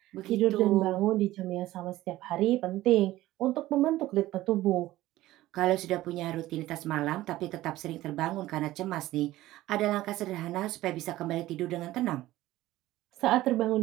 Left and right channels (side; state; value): left; quieter; 16.1 dB